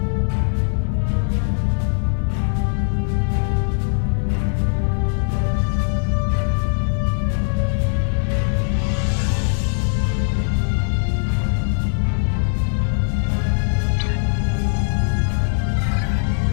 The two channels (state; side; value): silent; right; digital silence